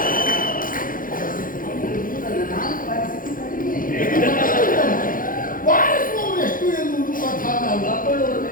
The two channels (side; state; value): right; late; 0.40 ms